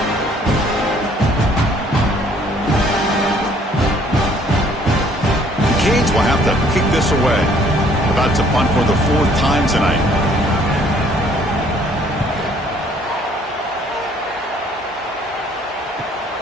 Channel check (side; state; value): both; normal; correlation 0.60